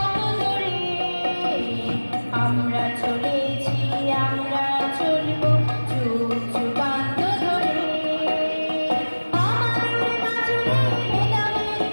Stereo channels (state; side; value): inverted; both; correlation -1.00